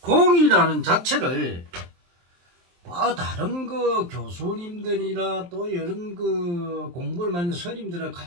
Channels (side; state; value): left; late; 23 ms